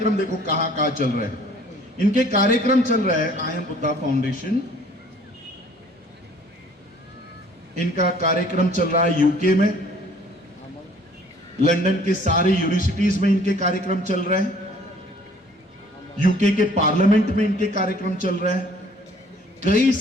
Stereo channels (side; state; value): both; normal; correlation 0.55